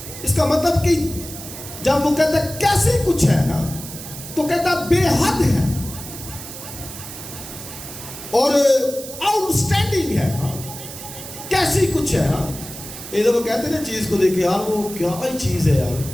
اس کا مطلب کہ جب وہ کہتا ہے کیسی کچھ ہے تو کہتا ہے بے حد ہے اور آؤٹ سٹینڈنگ ہے. کیسی کچھ ہے. ادھر وہ کہتے ہیں نا چیز کو دیکھے یار وہ کیا ہی چیز ہے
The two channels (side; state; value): right; noise; hiss, 12 dB below the sound